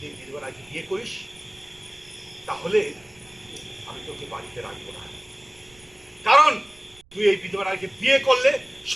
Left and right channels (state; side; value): noise; right; rumble, 28 dB below the sound